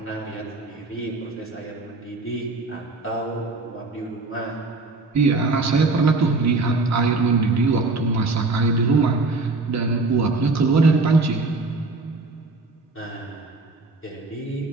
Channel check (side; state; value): left; quieter; 3.4 dB